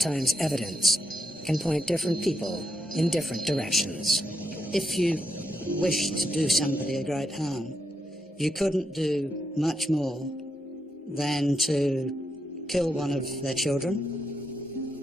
evidence can point different people in different directions. If you wished to do somebody a great harm, you couldn't do much more than to kill one of their children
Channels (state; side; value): normal; both; correlation 0.82